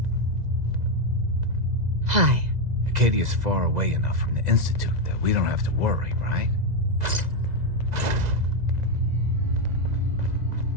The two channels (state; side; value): late; left; 2.0 ms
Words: Hi. Acadia's far away enough from the Institute that we don't have to worry, right?